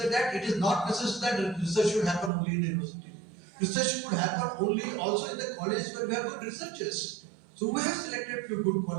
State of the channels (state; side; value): drops out; left; at 2.3 s